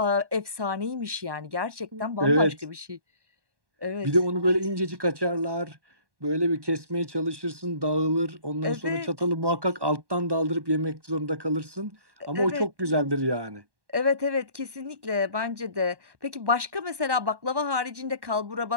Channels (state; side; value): late; left; 1.1 ms